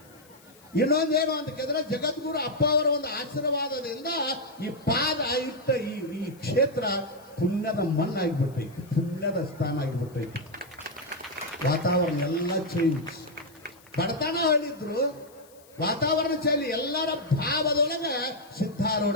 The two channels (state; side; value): noise; left; hiss, 27 dB below the sound